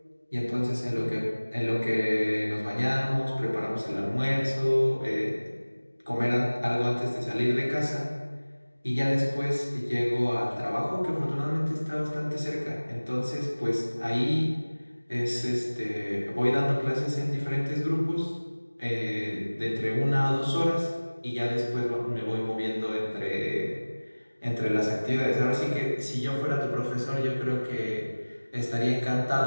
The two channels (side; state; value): both; inverted; correlation -1.00